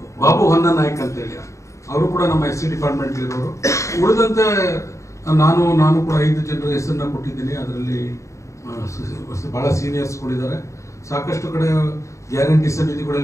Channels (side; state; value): right; late; 0.15 ms